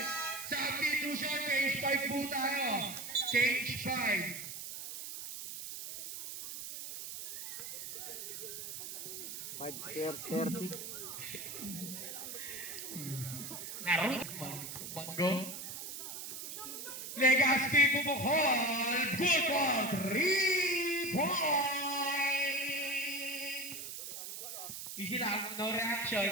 Substitution, change 5 po tayo. Change 5. $5.30. Naroon. Manggo. Legaspi Bukol. Good ball. 3 point. Easy lang. No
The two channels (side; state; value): right; noise; hiss, 8 dB below the sound